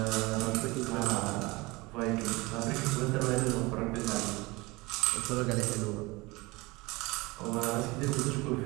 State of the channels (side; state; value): left; quieter; 23.4 dB